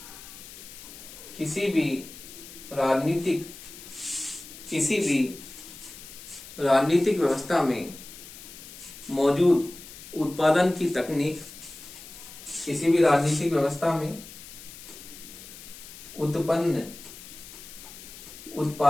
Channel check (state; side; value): noise; left; hiss, 16 dB below the sound